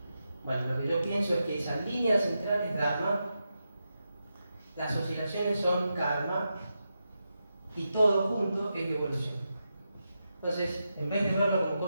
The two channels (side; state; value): both; inverted; correlation -0.88